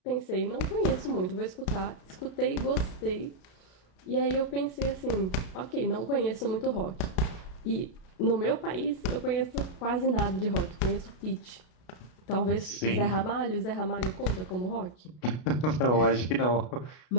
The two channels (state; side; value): late; right; 33 ms